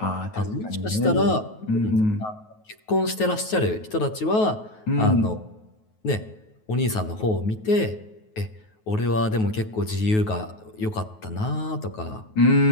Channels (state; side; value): late; right; 9.3 ms